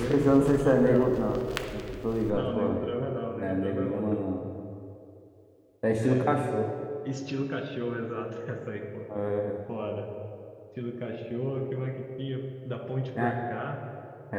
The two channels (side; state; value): both; identical; correlation 1.00